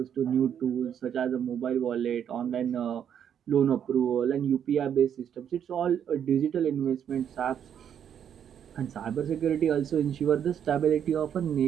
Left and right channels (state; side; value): quieter; left; 8.9 dB